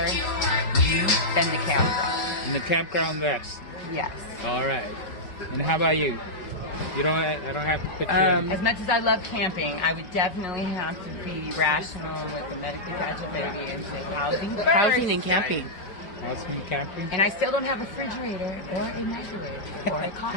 then the campground. And the campground best. Yes. All right. And how about you? You don't. I don't have to put you in. As much as I love camping, I would definitely have to be rational with a medically fragile baby and say housing first. Housing and camping. Housing and camping. And I still don't have a refrigerator or a microwave or a coffee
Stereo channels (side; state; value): right; late; 5.5 ms